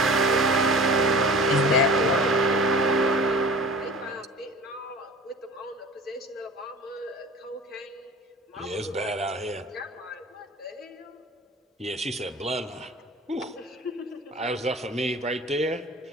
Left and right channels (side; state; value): both; normal; correlation 0.41